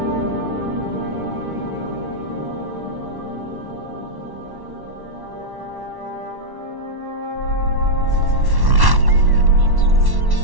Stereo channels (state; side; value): late; left; 1.1 ms